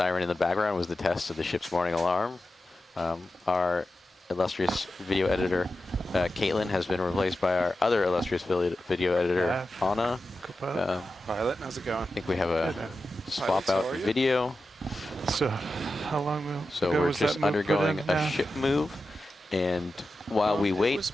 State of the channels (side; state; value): both; normal; correlation 0.92